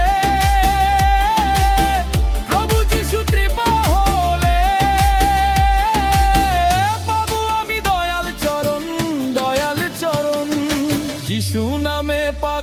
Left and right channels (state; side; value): identical; both; correlation 1.00